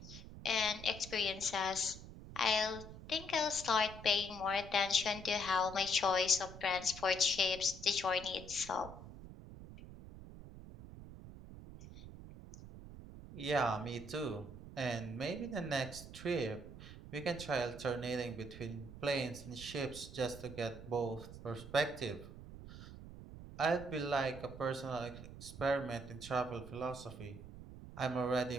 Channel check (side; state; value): right; noise; rumble, 13 dB below the sound